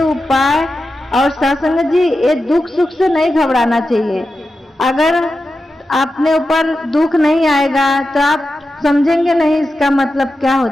उपाय और साथ संगत जी ये दुख सुख से नहीं घबराना चाहिए। अगर अपने ऊपर दुख नहीं आएगा तो आप समझेंगे नहीं इसका मतलब क्या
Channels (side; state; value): both; normal; correlation 0.91